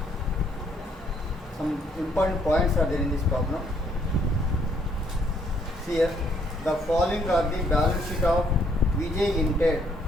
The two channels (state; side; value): normal; both; correlation 0.67